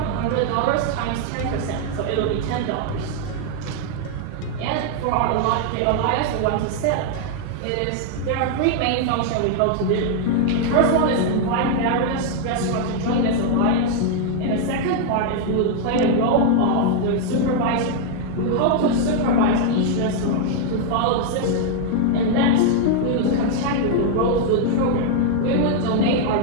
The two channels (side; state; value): both; different; correlation 0.00